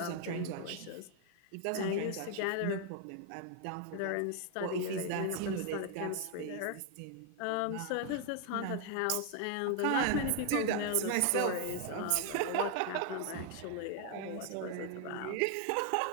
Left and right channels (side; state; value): both; different; correlation 0.00